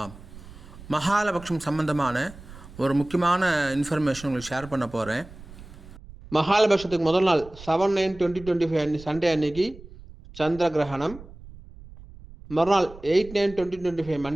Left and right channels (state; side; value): noise; right; rumble, 18 dB below the sound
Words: மகாலபக்ஷம் சம்பந்தமான ஒரு முக்கியமான இன்ஃபர்மேஷன் உங்களுக்கு ஷேர் பண்ண போகிறேன். மகாலபக்ஷத்துக்கு முதல் நாள் 7/9/2025 சண்டே அன்னைக்கு சந்திர கிரகணம். மறுநாள் 8/9/2025